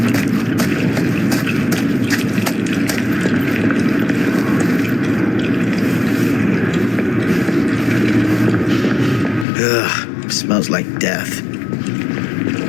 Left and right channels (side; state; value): right; drops out; at 9.5 s